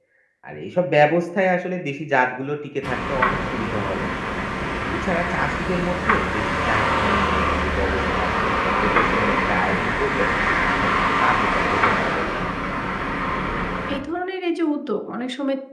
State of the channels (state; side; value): identical; both; correlation 1.00